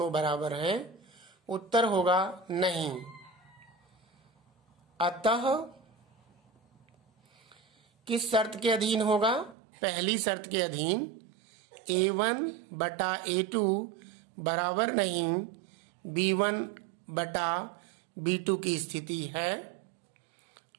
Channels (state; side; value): drops out; left; at 9.6 s